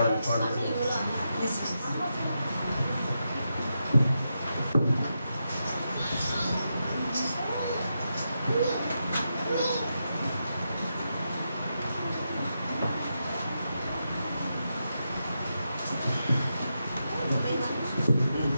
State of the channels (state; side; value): inverted; both; correlation -0.86